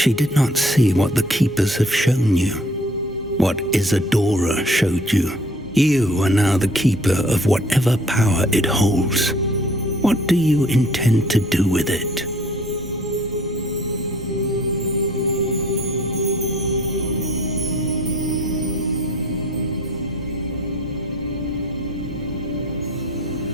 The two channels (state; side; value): normal; both; correlation 0.55